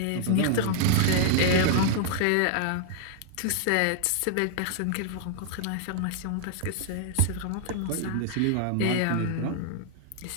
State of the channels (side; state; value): both; different; correlation 0.00